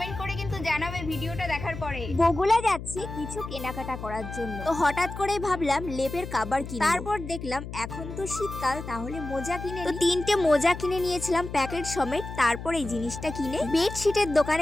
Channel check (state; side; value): noise; left; hum, 9 dB below the sound